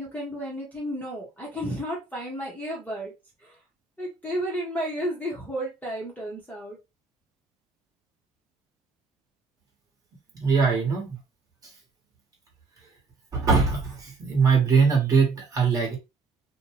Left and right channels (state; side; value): quieter; left; 4.3 dB